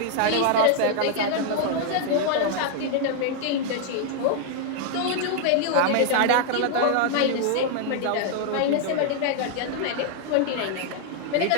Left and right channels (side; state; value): both; different; correlation 0.00